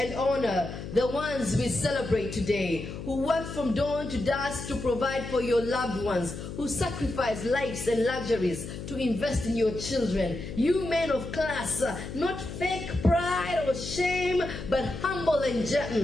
honor, the ones we celebrate today, who work from dawn to dusk to provide for your loved ones, who sacrifice lives and luxuries to invest in your children. You men of class, not fake pride or shame, but humble and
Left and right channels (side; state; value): left; noise; hum, 9 dB below the sound